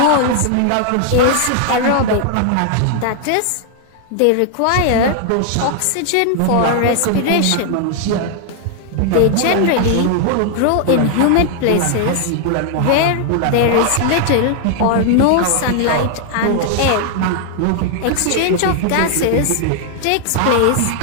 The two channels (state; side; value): different; both; correlation 0.00